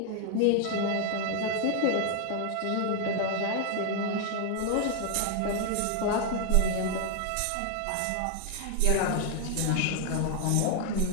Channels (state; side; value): different; both; correlation 0.00